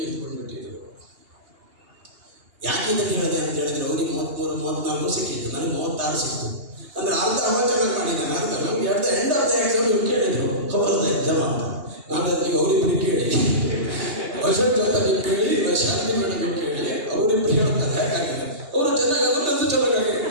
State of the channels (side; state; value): left; late; 2.8 ms